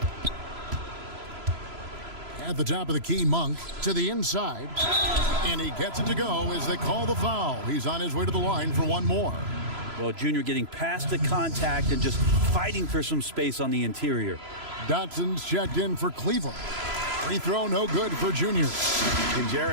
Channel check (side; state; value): left; late; 3.0 ms